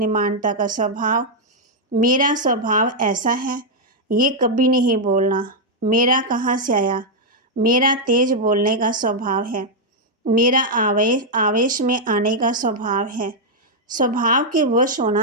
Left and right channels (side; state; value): both; normal; correlation -0.03